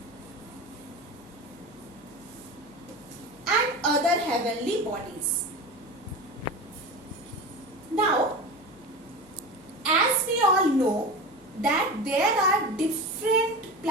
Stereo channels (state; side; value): normal; both; correlation 0.28